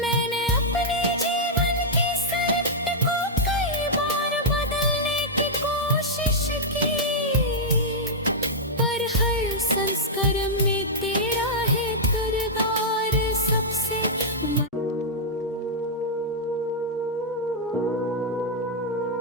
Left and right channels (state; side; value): normal; both; correlation -0.07